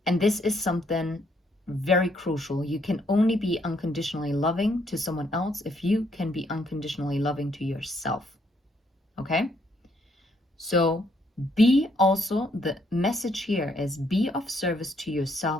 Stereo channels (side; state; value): both; normal; correlation 0.71